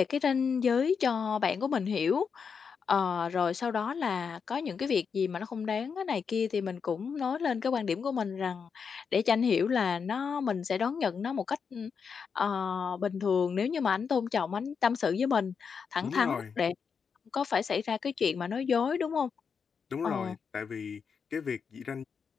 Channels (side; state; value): right; quieter; 6.1 dB